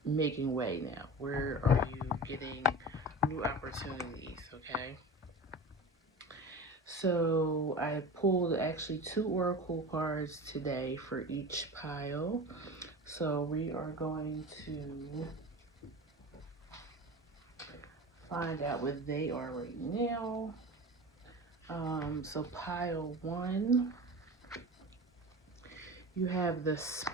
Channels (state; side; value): normal; both; correlation 0.32